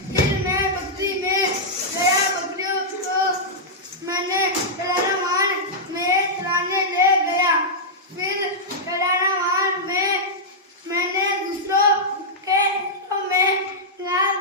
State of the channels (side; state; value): both; normal; correlation -0.09